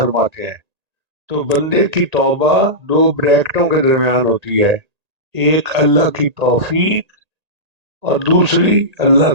ہیں۔ تو بندے کی توبہ دو بریکٹوں کے درمیان ہوتی ہے، ایک اللہ کی توفیق اور دوسری اللہ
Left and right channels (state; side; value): late; left; 1.8 ms